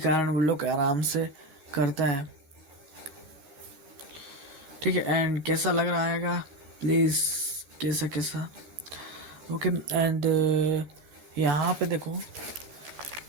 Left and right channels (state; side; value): late; left; 13 ms